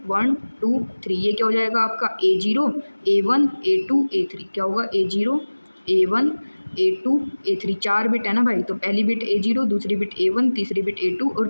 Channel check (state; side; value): inverted; both; correlation -1.00